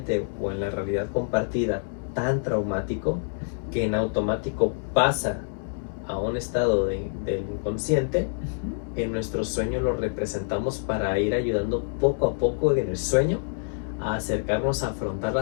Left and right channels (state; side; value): silent; right; digital silence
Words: o en la realidad compartida tan traumático, que en automático pasa a un estado del inconsciente, en nuestro sueño lo representamos para ir ayudando poco a poco en el sueño a acercarnos a afrontar